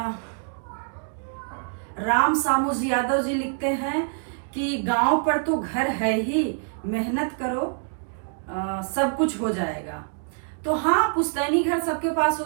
राम सामुज यादव जी लिखते हैं कि गांव पर तो घर है ही, मेहनत करो सब कुछ हो जाएगा। तो हाँ, पुश्तैनी घर सबके पास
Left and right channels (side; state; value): left; silent; 61 dB below the other